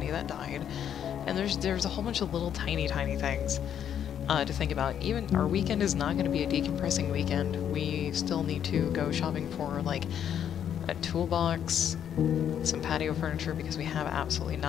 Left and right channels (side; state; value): right; quieter; 9.2 dB